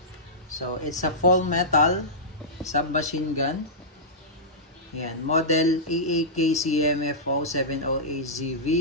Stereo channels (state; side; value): normal; both; correlation -0.15